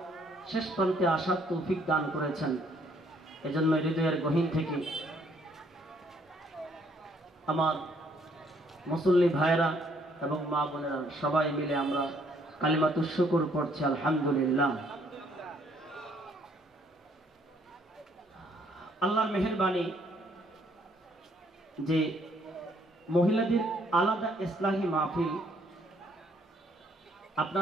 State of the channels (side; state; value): both; normal; correlation 0.66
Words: শেষ প্রান্তে আসার তৌফিক দান করেছেন। এজন্য হৃদয়ের গহীন থেকে আমার মুসল্লি ভাইরা এবং মা বোনেরা সবাই মিলে আমরা কালিমাতুশ শুকর পড়ছি আলহামদুলিল্লাহ। আল্লাহর মেহেরবানি, যে মহিলাদের আলাদা ইসলাহি মাহফিল